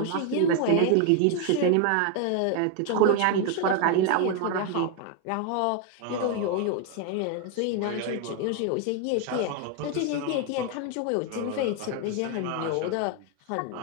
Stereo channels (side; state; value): both; different; correlation 0.01